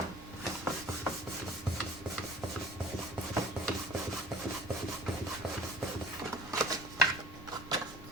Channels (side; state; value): both; normal; correlation 0.45